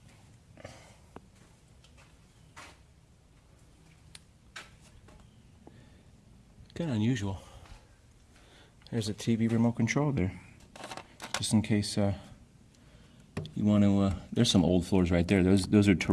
Kind of unusual. There's a TV remote control there, just in case you want to. There's some old floors right there. Those are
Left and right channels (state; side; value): identical; both; correlation 1.00